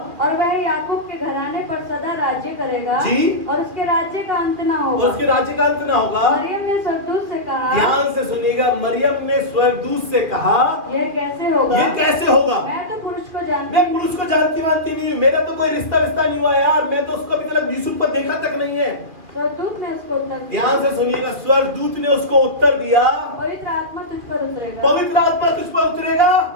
और वह याकूब के घराने पर सदा राज्य करेगा, जी, और उसके राज्य का अंत न और होगा। उसके राज्य का अंत ना होगा। मरियम ने स्वर्गदूत से कहा, ध्यान से सुनिएगा, मरियम ने स्वर्गदूत से कहा यह कैसे होगा? ये कैसे होगा? मैं तो पुरुष को जानती मैं पुरुष को जानती मानती नहीं हूँ, मेरा तो कोई रिश्ता नहीं हुआ यार, मैं तो उसको अभी तक यूसुफ पर देखा तक नहीं है। स्वर्गदूत ने उसको उत्तर दिया, ध्यान से सुनिएगा, स्वर्गदूत ने उसको उत्तर दिया पवित्र आत्मा तुझ पर उतरेगा, पवित्र आत्मा तुझ पर उतरेगा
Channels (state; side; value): late; left; 2.4 ms